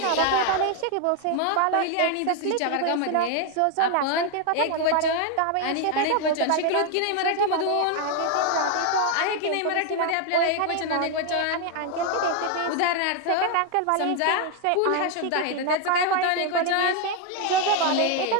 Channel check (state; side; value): different; both; correlation 0.01